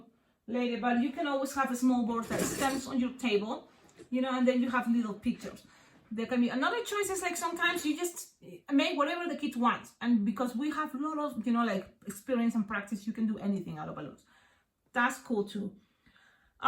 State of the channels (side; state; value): both; identical; correlation 1.00